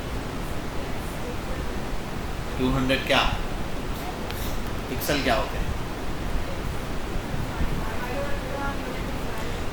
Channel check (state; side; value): identical; both; correlation 1.00